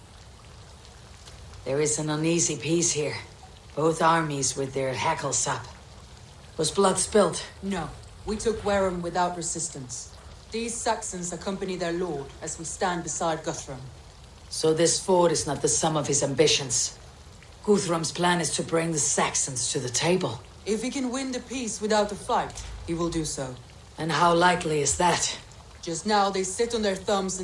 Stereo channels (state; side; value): identical; both; correlation 1.00